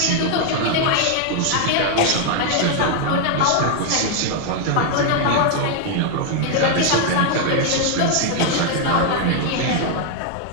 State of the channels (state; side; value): different; both; correlation 0.00